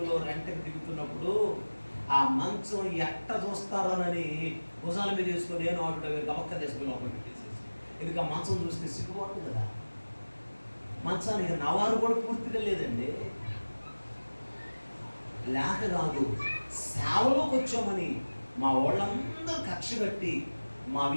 రెంట్కి దిగుతున్నప్పుడు ఆ మంచం ఎట్ట చూస్తారోనని భుజాల మీద వేసుకొని నేను ఆటో గమక్క తీసుకుని లోపల పెట్టేసేసి, ఎందుకు ఆ మంచం చూస్తే సిగ్గుపడుతుంది కదా. మంచానికి నవారు కూడా పూర్తిగా లేదండి. లేక కాదు, సేవలోకి వచ్చామని మా వాళ్ళందరూ కక్ష కట్టి మా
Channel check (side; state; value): both; inverted; correlation -1.00